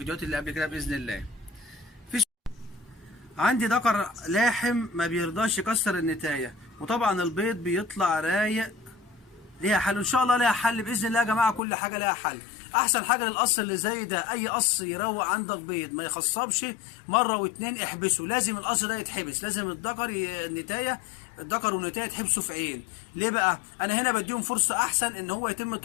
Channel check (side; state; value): right; drops out; at 11.6 s